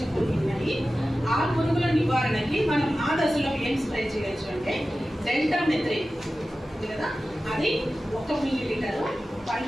పురుగులు ఉన్నాయి. ఆ పురుగుల నివారణకి మనం ఆ దశలో ఏం స్ప్రే చేయొచ్చు అంటే డెల్టామెథ్రిన్ కదా, అది 1 మిల్లీలీటర్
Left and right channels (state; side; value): normal; both; correlation 0.95